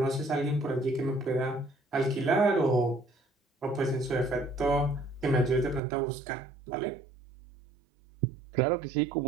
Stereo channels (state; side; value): drops out; left; at 5.8 s